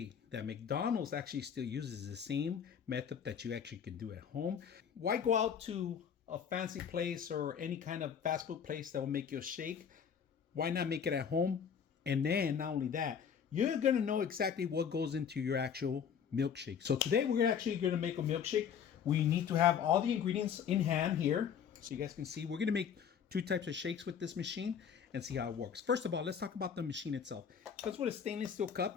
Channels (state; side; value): quieter; right; 7.6 dB